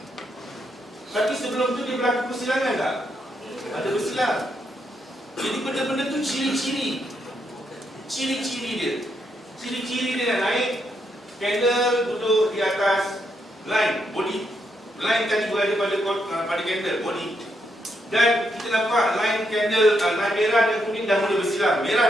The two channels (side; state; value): both; normal; correlation 0.79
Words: Tapi sebelum tu dia berlaku persilangan tak? Ada bersilang. Jadi benda-benda tu ciri-ciri. Ciri-ciri dia. Ciri-ciri dia nak naik, candle duduk di atas line, body. Line tadi berada pada candle, body. Dan kita nampak line candle, line merah dan kuning dah mula bersilang.